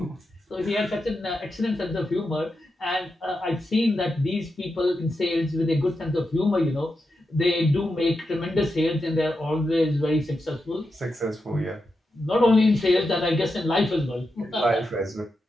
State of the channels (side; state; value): both; normal; correlation 0.88